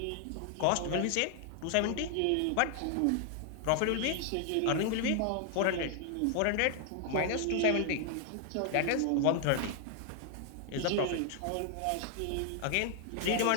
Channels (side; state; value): both; different; correlation 0.00